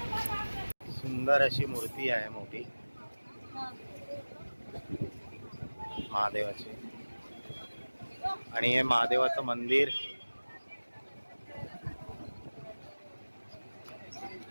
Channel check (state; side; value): inverted; both; correlation -1.00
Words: सुंदर अशी मूर्ती आहे मोठी महादेवाची. आणि हे महादेवाचं मंदिर